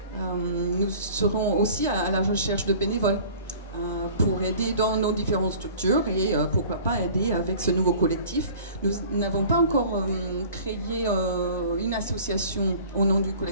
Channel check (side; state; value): both; inverted; correlation -0.46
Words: Nous serons aussi à la recherche de bénévoles pour aider dans nos différentes structures et pourquoi pas aider avec ce nouveau collectif. Nous n'avons pas encore créé une association au nom du